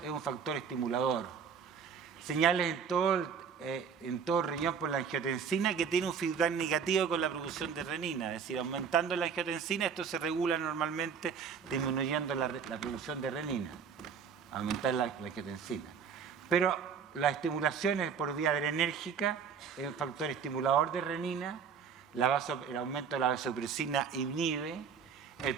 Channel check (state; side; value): quieter; left; 6.7 dB